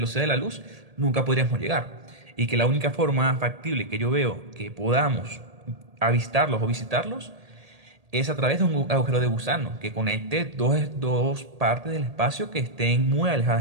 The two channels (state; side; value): late; left; 1.8 ms